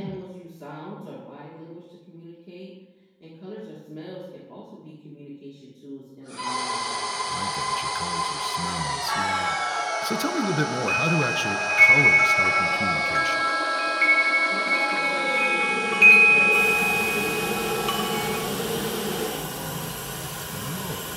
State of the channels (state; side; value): identical; both; correlation 1.00